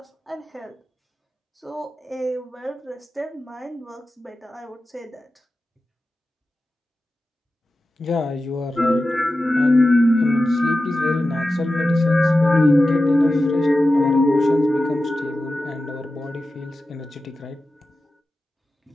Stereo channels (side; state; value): both; normal; correlation 0.93